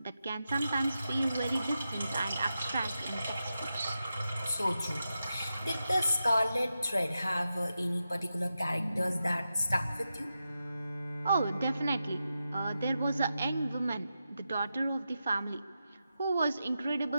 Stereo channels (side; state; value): both; inverted; correlation -0.89